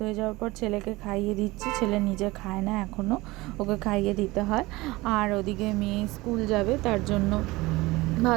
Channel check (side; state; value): left; quieter; 20.8 dB